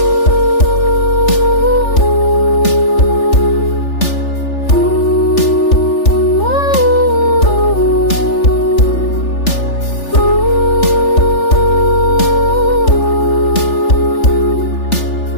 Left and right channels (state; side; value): late; right; 3.4 ms